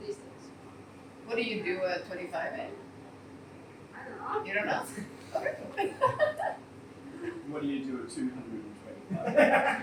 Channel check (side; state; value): both; identical; correlation 1.00